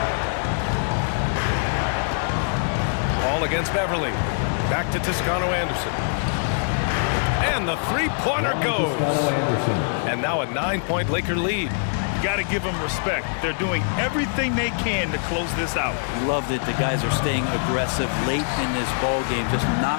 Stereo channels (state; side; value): silent; right; 63 dB below the other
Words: Ball against Beverly. Back to Toscano Anderson. And the 3-pointer goes. And now a 9-point Laker lead. You got to give them respect. They're doing everything they can to close this out. Love that the guys are staying aggressive late in this ball game, just not